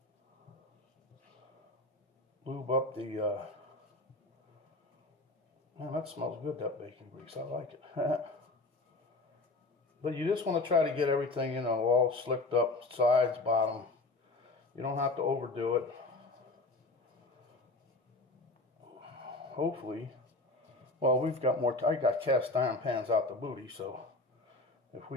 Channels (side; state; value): right; quieter; 3.1 dB